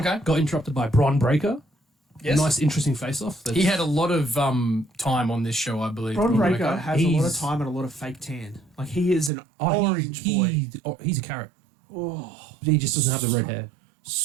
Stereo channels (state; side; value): drops out; left; at 9.3 s